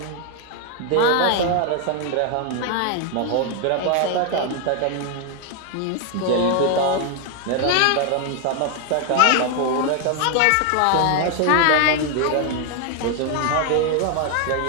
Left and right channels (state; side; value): different; both; correlation 0.01